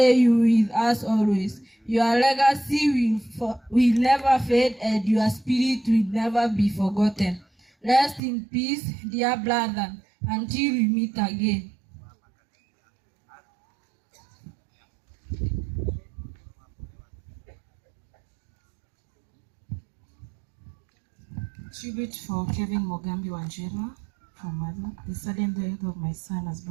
you with us always. Your legacy will never fade, and your spirit will never be forgotten. Rest in peace, dear brother, until we meet again. Tribute for Kevin Mogambi Wanjira from Mother. The sudden death of my son has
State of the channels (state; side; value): drops out; left; at 8.2 s